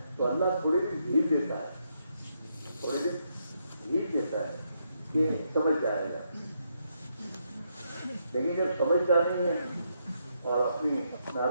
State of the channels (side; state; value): both; inverted; correlation -0.78